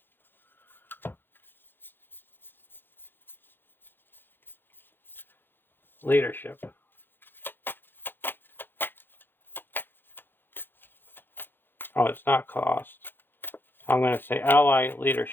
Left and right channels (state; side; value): late; right; 0.099 ms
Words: Leadership. Oh, it's not cost. I'm going to say ally